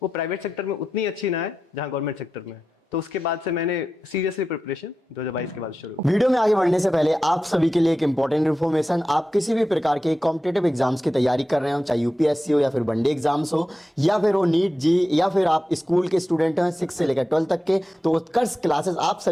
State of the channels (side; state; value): both; normal; correlation 0.92